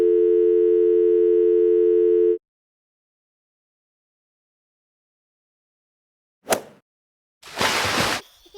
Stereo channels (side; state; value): both; identical; correlation 1.00